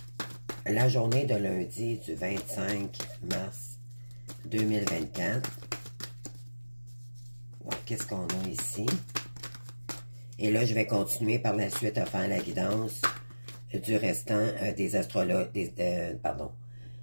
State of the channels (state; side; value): inverted; both; correlation -1.00